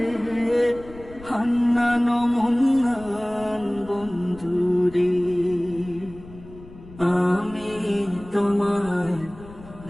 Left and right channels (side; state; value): left; noise; rumble, 19 dB below the sound